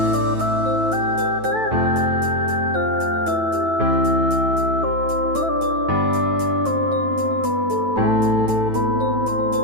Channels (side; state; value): left; late; 9.2 ms